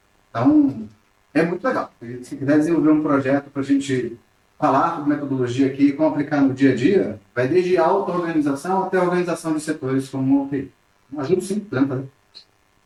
Então, é muito legal. E se quiser desenvolver um projeto para a gente falar sobre metodologia aqui e como aplicar no dia a dia, vai desde auto-organização até organização de setores como o TI. Ajuda sim, podemos fazer.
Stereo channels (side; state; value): both; identical; correlation 1.00